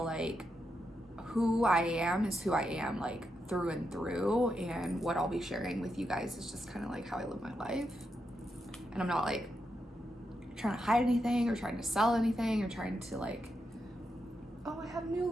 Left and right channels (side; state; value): both; normal; correlation 0.85